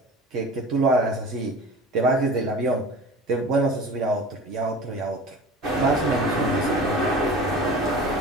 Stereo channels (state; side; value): normal; both; correlation 0.38